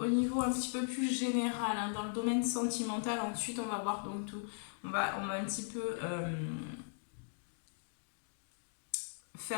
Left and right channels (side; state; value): right; silent; digital silence